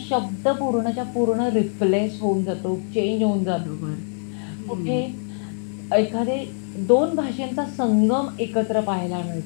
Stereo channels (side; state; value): right; silent; 63 dB below the other